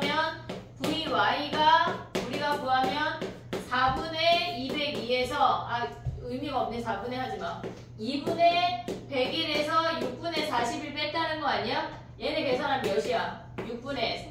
vy가 우리가 구하면 4분의 202에서 의미가 없네. 4분의 하지마. 2분의 101에서 6분의 41 뺐다는 거 아니야? 얘네 계산하면 몇이야? 6분의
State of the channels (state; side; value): identical; both; correlation 1.00